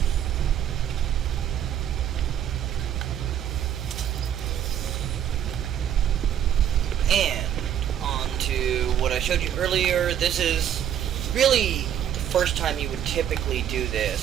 And on to what I showed you earlier. This is really the first time you would typically do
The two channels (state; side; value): quieter; left; 9.9 dB